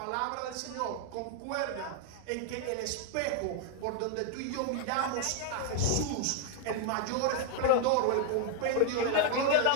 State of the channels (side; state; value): both; different; correlation 0.00